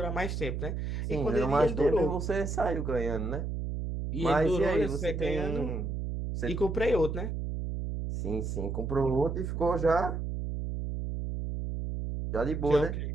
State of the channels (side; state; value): right; noise; hum, 3 dB below the sound